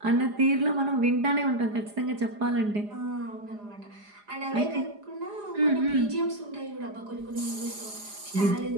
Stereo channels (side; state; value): left; late; 4.9 ms